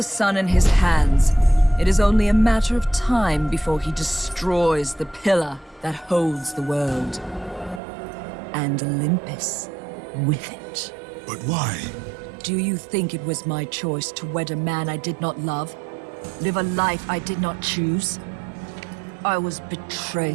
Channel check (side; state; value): left; drops out; at 7.8 s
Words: sun in his hands, it is only a matter of time before he destroys the pillar that holds the world. And Olympus with it. But why? Do you think it was my choice to wed a man I did not love? Live a life I did not choose? I was